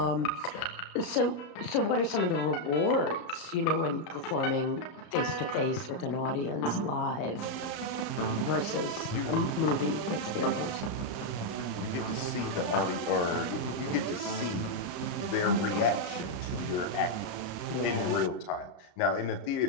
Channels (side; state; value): right; late; 34 ms